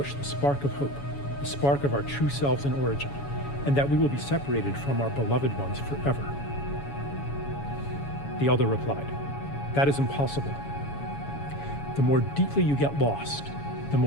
the spark of hope, the spark of our true selves in origin, and that we will be separated from our beloved ones forever?" The elder replied, "That is impossible. The more deeply you get lost, the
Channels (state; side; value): late; right; 7.1 ms